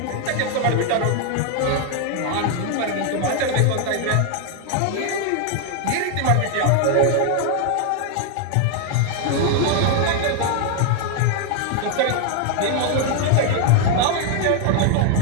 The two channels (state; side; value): different; both; correlation 0.01